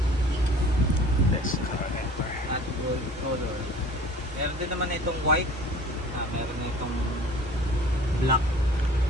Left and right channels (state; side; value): normal; both; correlation 0.46